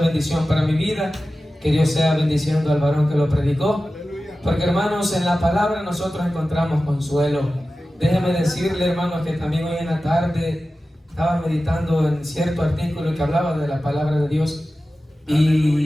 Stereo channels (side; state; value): both; normal; correlation 0.95